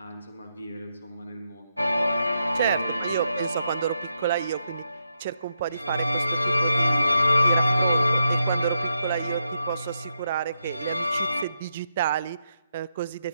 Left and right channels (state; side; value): inverted; both; correlation -0.83